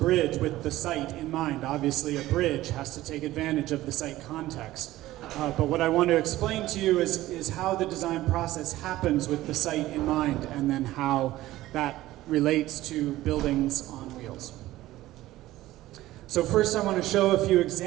with the site in mind. Obviously, a bridge has to take advantage of the site context. But what I want to explain to you is how the design process happens with the site in mind, and then how that relates to buildings on wheels. So first I want to show a few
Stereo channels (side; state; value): left; quieter; 16.1 dB